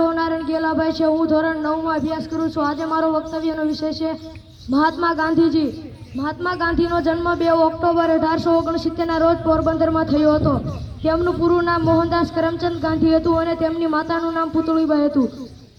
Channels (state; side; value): identical; both; correlation 1.00